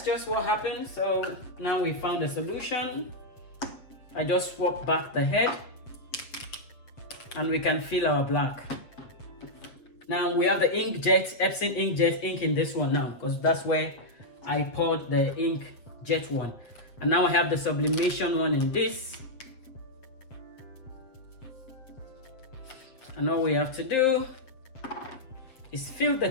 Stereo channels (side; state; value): right; late; 7.8 ms